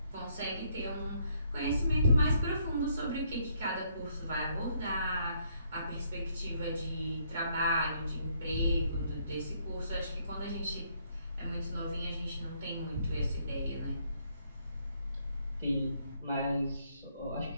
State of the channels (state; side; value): inverted; both; correlation -0.70